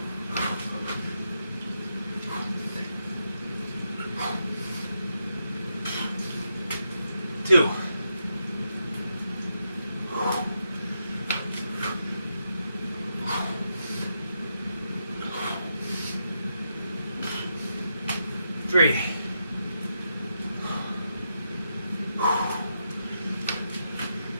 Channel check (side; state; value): both; inverted; correlation -0.83